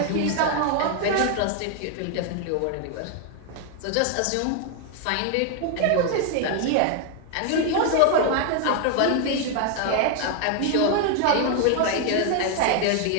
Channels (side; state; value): both; different; correlation 0.00